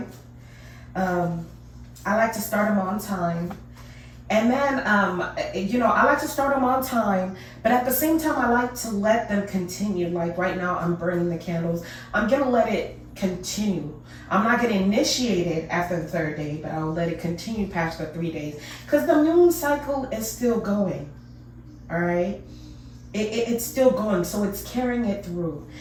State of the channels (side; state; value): both; identical; correlation 1.00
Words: I like to start them on time. And then, I like to start them on time, but at the same time, I like to let them continue. Like right now, I'm burning the candles. I'm going to let it continue. I'm not going to initiate it after the third day, but I'll let it continue past the 3 days. Because the moon cycle is still going, all right? It's still going, so it's carrying it through.